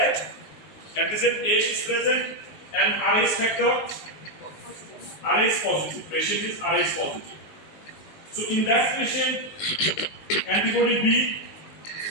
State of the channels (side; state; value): right; late; 19 ms